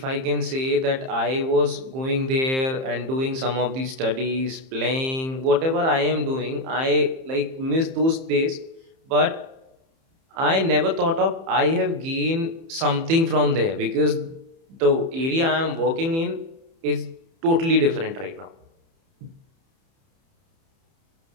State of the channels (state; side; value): late; left; 30 ms